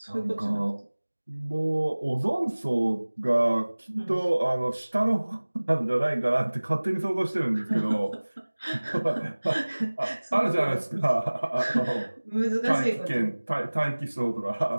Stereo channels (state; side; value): inverted; both; correlation -1.00